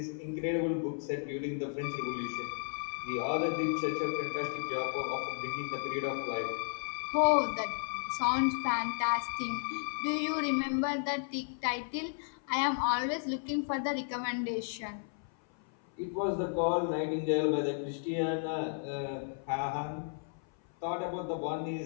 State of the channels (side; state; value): right; silent; 55 dB below the other